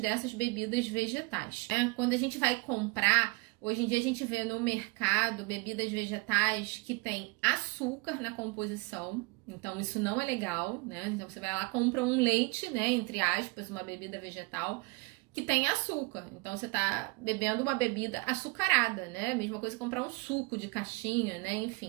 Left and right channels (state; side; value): quieter; left; 26.6 dB